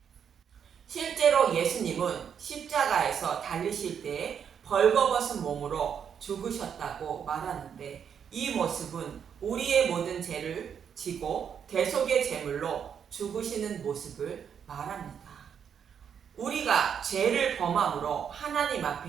실제로 예수님은 십자가에서 달리실 때 벌거벗은 몸으로 죽으셨다고 말하는데 이 모습은 우리의 모든 죄를 지고 대속의 제물로 죽으시는 모습을 말합니다. 우리가 죄를 범함으로 하나님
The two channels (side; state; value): left; quieter; 7.8 dB